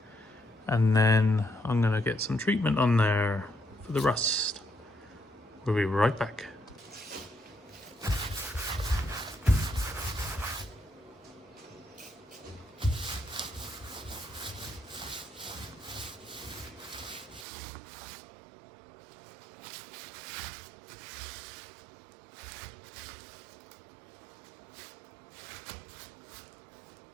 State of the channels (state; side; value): drops out; left; at 17.4 s